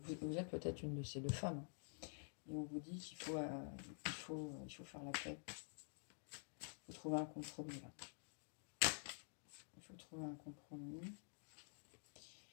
vous êtes peut-être une de ces 2 femmes. Et on vous dit qu'il faut faire la paix. Il faut trouver un compromis là. Il faut trouver un compromis.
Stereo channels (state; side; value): silent; right; digital silence